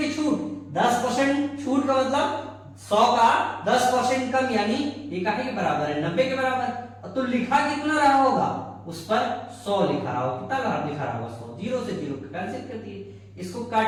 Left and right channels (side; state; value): both; identical; correlation 1.00